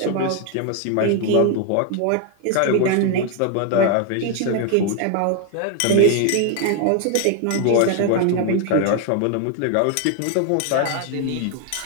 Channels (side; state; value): both; different; correlation 0.01